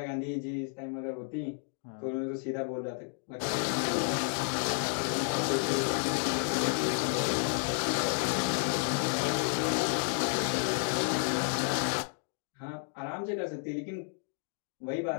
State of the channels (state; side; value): silent; right; 57 dB below the other